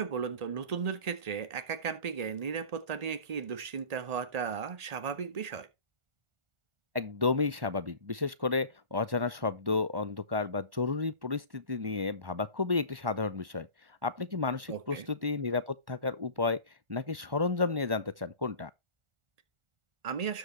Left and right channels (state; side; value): late; left; 1.1 ms